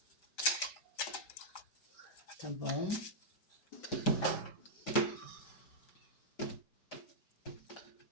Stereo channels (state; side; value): late; right; 4.7 ms